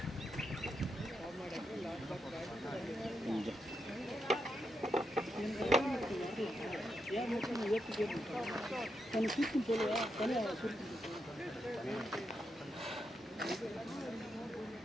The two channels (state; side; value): normal; both; correlation 0.83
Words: ஏன் மட்டும் நான் ஏற்றி கேட்பேன். நான் சுருக்குன்னு சொல்லுவேன், தனியாக சுருக்குன்னு